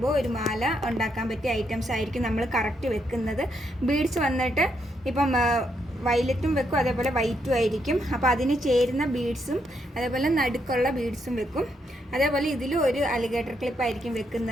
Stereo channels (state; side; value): normal; both; correlation 0.77